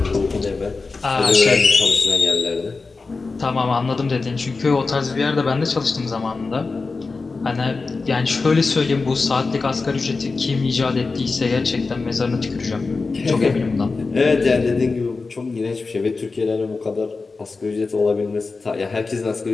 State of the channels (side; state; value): right; quieter; 4.1 dB